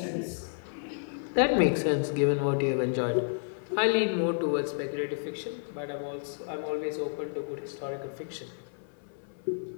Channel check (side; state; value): right; silent; 57 dB below the other